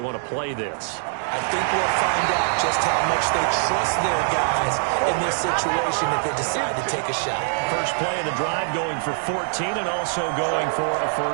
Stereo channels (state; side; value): silent; left; 63 dB below the other